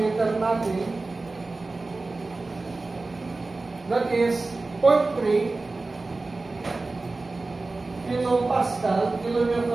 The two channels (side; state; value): left; quieter; 3.4 dB